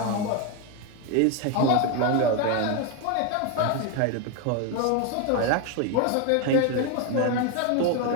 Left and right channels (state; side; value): different; both; correlation 0.02